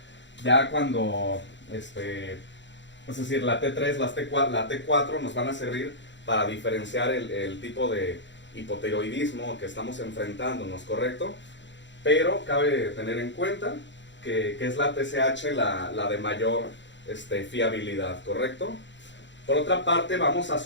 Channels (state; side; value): late; right; 0.53 ms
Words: Ya cuando, es decir, la T3, la T4 nos van a servir para diferenciar el tipo de hipotiroidismo que estamos enfrentándonos, ¿correcto? Pero cabe tener en cuenta que es la TSH la de mayor fiabilidad, ¿correcto? Por otra parte, vamos a